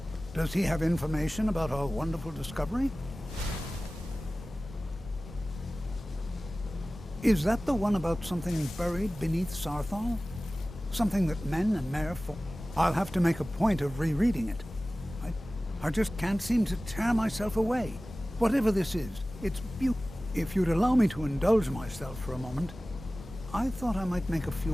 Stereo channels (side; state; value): both; normal; correlation 0.97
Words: Does he have information about our wonderful discovery? Is that the one about something buried beneath Sarthal? Something that men and Mare fought? I'll have to make a point of rereading it. I just can't seem to tear myself away. Whatever this is, it's beautiful. If you'd allow me to indulge myself for a moment, I thought I might make a